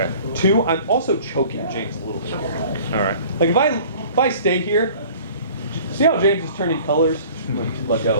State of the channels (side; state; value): both; inverted; correlation -0.48